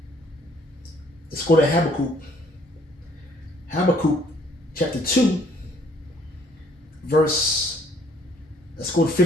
Habakkuk. Habakkuk chapter 2, let's go to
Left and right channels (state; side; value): normal; both; correlation 0.62